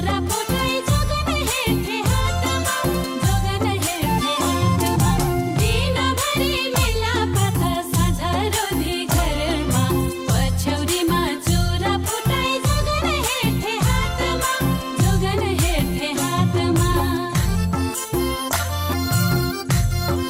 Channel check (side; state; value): both; identical; correlation 1.00